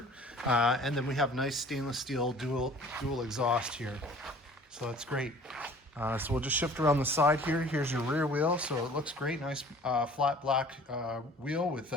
And then we have nice stainless steel dual exhaust here. So that's great. So we'll just shift around the side here. Here's your rear wheel. So it looks great. Nice flat black wheel with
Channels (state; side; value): normal; both; correlation 0.49